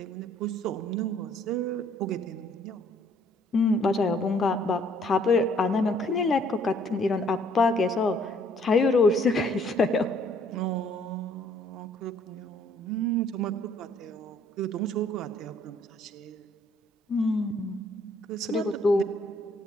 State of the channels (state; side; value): normal; both; correlation 0.62